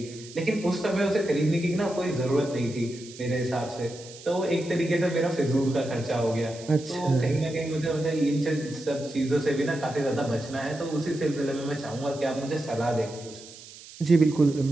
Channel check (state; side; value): noise; right; hiss, 17 dB below the sound